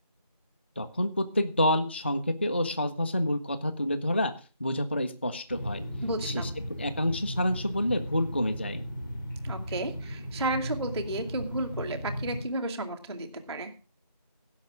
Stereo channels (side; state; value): both; inverted; correlation -0.73